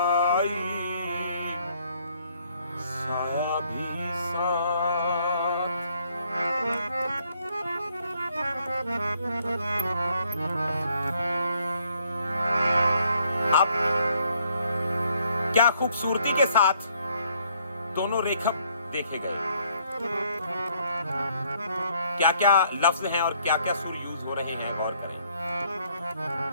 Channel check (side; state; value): both; inverted; correlation -0.67